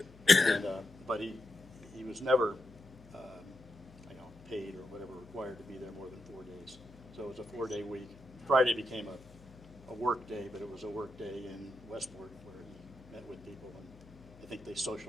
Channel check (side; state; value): left; noise; hum, 21 dB below the sound